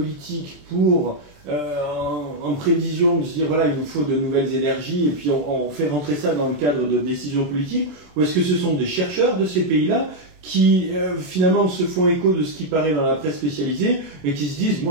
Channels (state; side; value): late; left; 27 ms